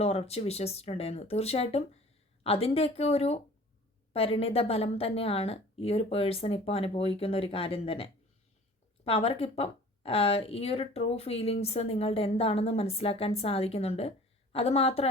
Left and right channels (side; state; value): both; normal; correlation 0.47